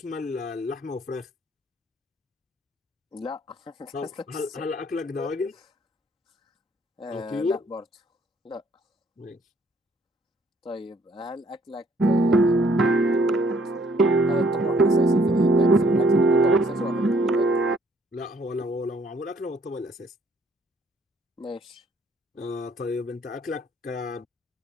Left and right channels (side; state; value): both; normal; correlation 0.63